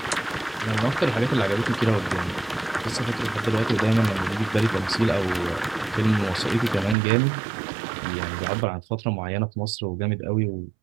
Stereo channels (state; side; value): drops out; left; at 7.0 s